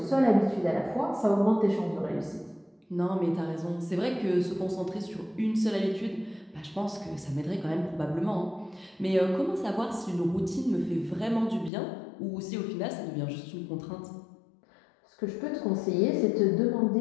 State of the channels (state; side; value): drops out; right; at 11.7 s